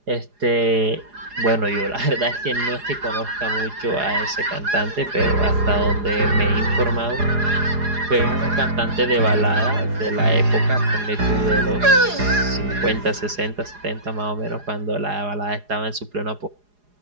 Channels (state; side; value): late; left; 4.8 ms